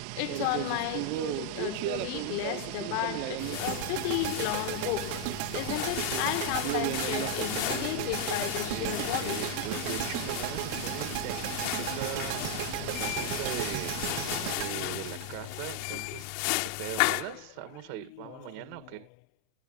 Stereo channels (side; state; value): both; different; correlation 0.00